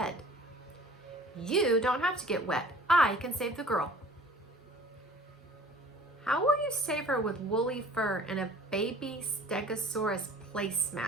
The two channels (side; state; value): both; normal; correlation 0.49